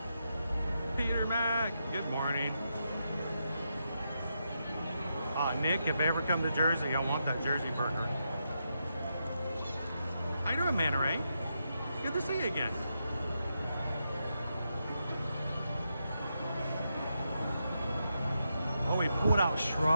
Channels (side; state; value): both; inverted; correlation -0.84